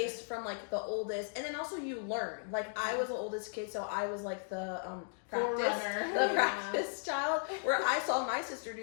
from like the oldest. And then also you learn. Like I was the oldest kid, so I was like the practice child, where I saw my sister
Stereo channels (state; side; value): silent; right; digital silence